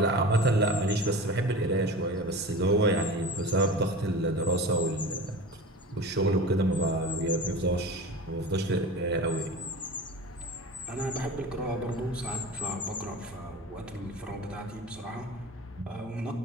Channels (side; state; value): both; normal; correlation 0.33